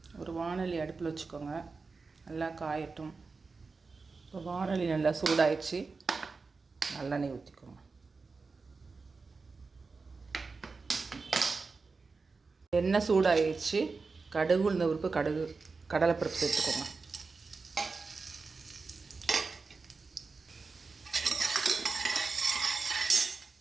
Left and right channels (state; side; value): quieter; left; 4.3 dB